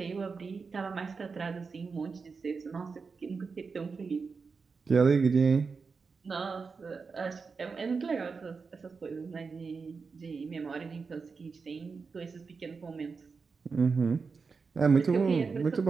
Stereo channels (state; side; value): quieter; left; 4.9 dB